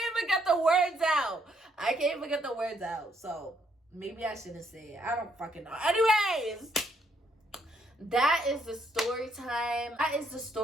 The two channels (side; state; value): both; normal; correlation 0.72